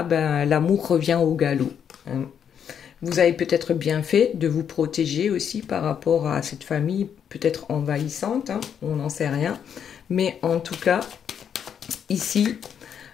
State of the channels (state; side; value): quieter; right; 8.2 dB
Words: l'amour revient au galop. Hein. Vous avez peut-être bien fait de vous protéger aussi par rapport à cette famille, peut-être envahissante. Hein, on n'en sait rien. Mais en tout cas, ici,